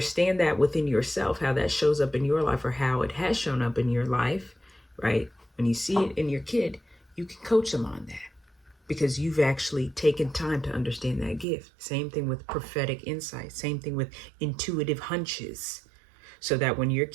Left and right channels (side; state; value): left; drops out; at 11.5 s